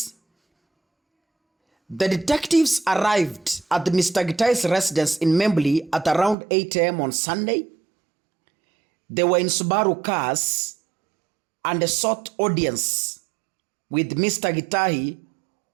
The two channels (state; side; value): drops out; left; at 6.4 s